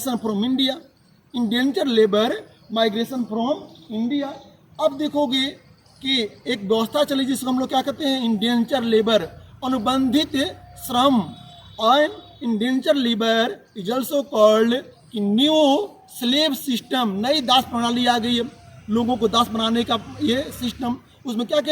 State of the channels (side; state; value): both; identical; correlation 1.00